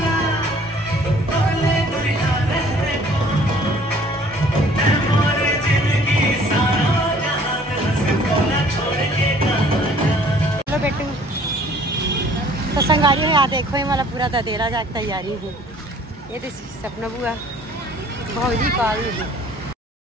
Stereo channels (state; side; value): normal; both; correlation 0.55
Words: बेटू तो संगारी है। यहाँ देखो ये वाला पूरा दतेला जाके तैयारी है। ये तो सपना बुआ भौजी कॉल